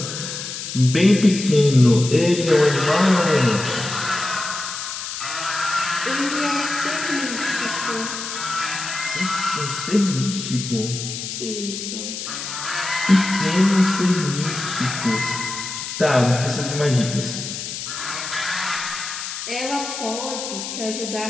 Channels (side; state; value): left; noise; hiss, 7 dB below the sound